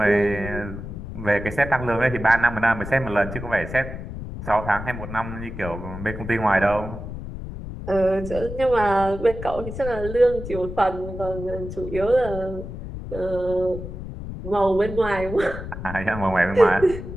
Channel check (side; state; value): left; noise; rumble, 9 dB below the sound